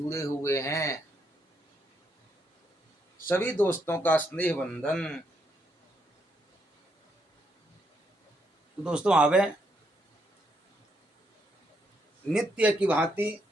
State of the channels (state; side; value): normal; both; correlation 0.76